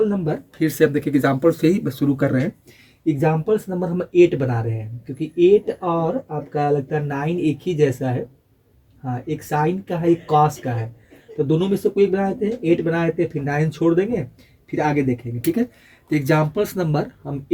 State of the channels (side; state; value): both; identical; correlation 1.00